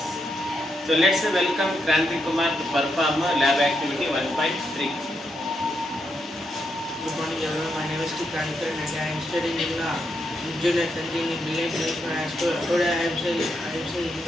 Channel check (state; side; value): normal; both; correlation 0.82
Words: So let's welcome Kranti Kumar to perform lab activity 1.3. Good morning everyone, my name is Kranti and I am studying in junior canteen in Brilliant English Medium High School. Today I am saying